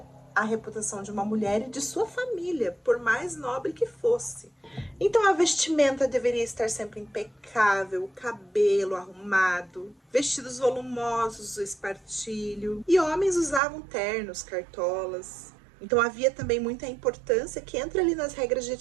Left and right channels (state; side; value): drops out; left; at 13.6 s